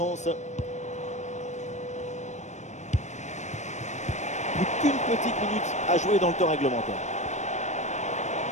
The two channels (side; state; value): right; late; 0.34 ms